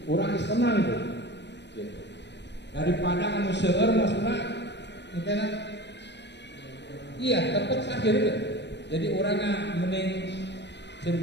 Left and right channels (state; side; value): late; right; 0.50 ms